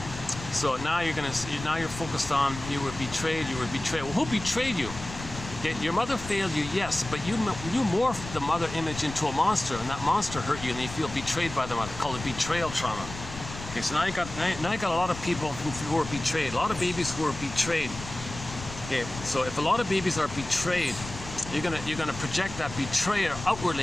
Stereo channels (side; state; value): left; noise; rumble, 11 dB below the sound